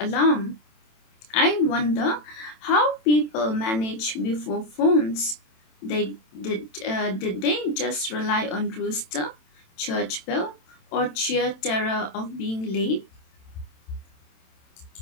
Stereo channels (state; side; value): late; right; 27 ms